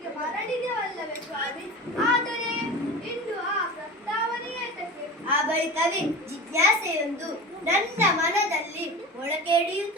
ಮರಳಿದೆವಲ್ಲವೇ ಸ್ವಾಮಿ. ಆದರೆ ಇಂದು ಆ ಪ್ರಸ್ತಾವನೆಯೇ ತಕ್ಕೆ. ಆ ಬಳಿಕವೇ ಜಿಜ್ಞಾಸೆಯೊಂದು ನನ್ನ ಮನದಲ್ಲಿ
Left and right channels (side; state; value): both; normal; correlation 0.33